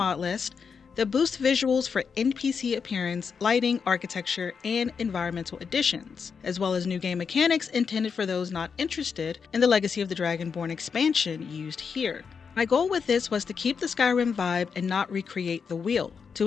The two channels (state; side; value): quieter; right; 6.0 dB